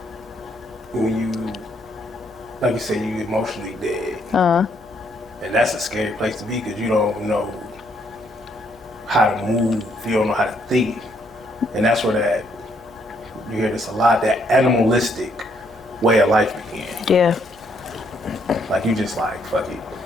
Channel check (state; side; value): noise; left; hum, 28 dB below the sound